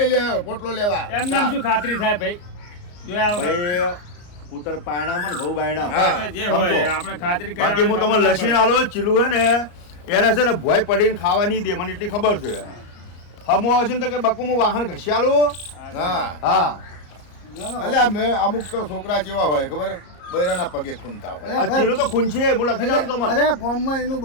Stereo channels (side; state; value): right; late; 34 ms